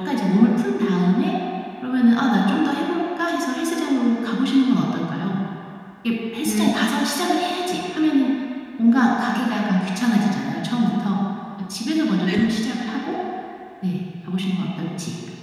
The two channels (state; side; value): identical; both; correlation 1.00